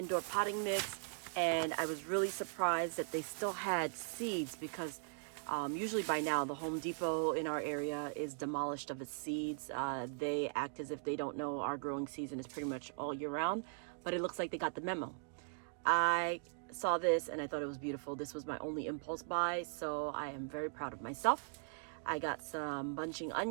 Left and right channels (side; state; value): left; silent; digital silence